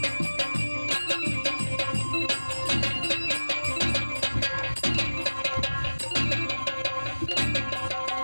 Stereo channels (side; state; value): both; inverted; correlation -1.00